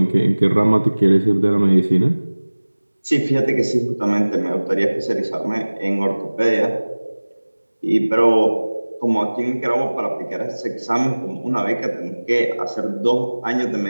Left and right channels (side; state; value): both; inverted; correlation -1.00